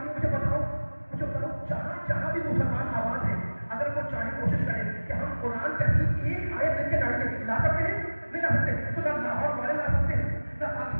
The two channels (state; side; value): inverted; both; correlation -1.00